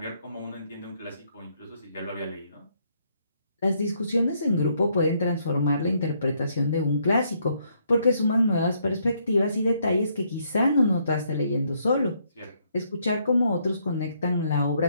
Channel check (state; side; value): inverted; both; correlation -0.72